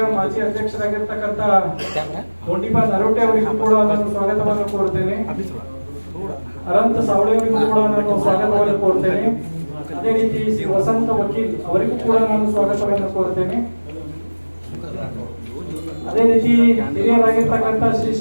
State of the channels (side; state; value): both; inverted; correlation -1.00